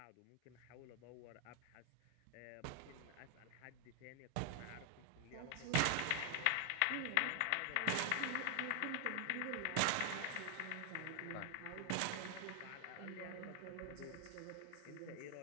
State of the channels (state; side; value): different; both; correlation 0.00